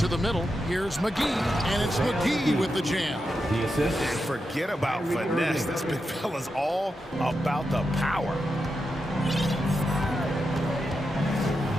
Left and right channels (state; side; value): normal; both; correlation 0.87